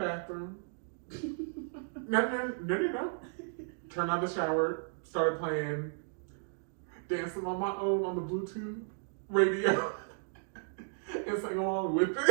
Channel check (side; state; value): left; silent; digital silence